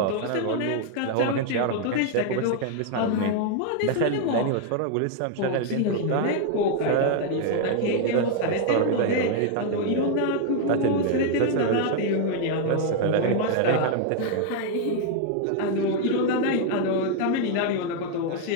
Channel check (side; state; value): both; different; correlation 0.00